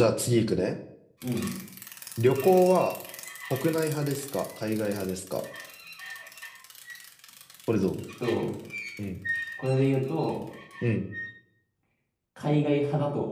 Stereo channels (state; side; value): identical; both; correlation 1.00